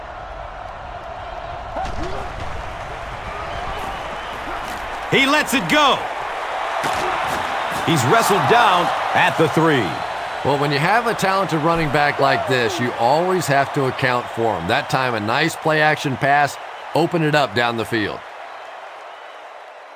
He lets it go. He's wrestled down at the 3. Well, when you have a talented running back like this, you always have to account for him. That time, a nice play-action pass, open it up down the field.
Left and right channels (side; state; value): both; identical; correlation 1.00